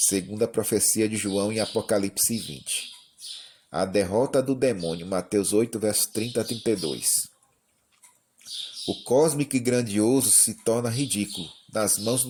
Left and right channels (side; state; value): both; identical; correlation 1.00